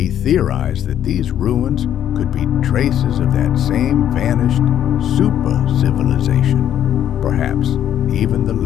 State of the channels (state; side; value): quieter; right; 10.4 dB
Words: theorized that these ruins could be traces of that same vanished super-civilization, perhaps even the